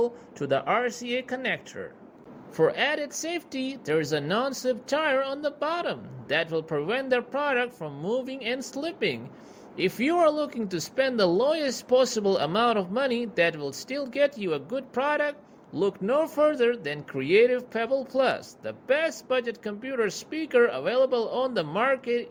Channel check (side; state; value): both; identical; correlation 1.00